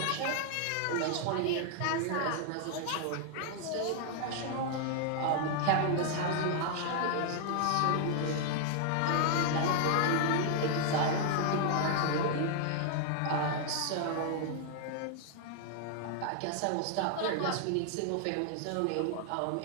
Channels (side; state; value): both; different; correlation 0.00